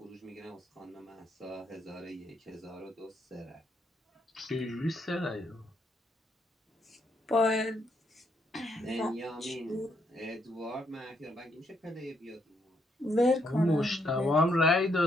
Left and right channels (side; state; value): both; normal; correlation 0.74